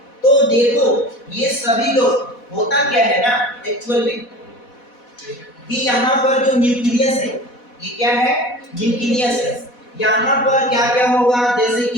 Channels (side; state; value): right; late; 4.1 ms